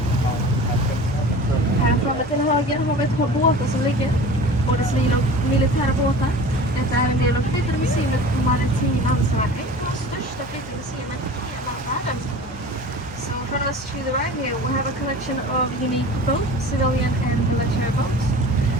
Här framme till höger har vi ett par båtar som ligger, både civila och militära båtar. Detta är en del av flytande museet Maritim Ansvar, ett av de största flytande museerna i hela världen. So from us to the right here we have a collection of unique both civilian and military boats.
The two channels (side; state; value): both; normal; correlation 0.39